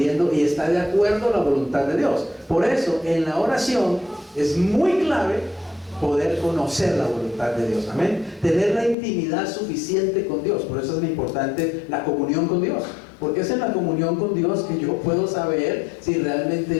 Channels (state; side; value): drops out; right; at 9.0 s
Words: y está de acuerdo a la voluntad de Dios. Por eso en la oración es muy clave poder conocer la voluntad de Dios. Amén. Tener la intimidad suficiente con Dios. Por eso es muy importante la comunión con Dios, porque es en la comunión con Dios que yo puedo saber si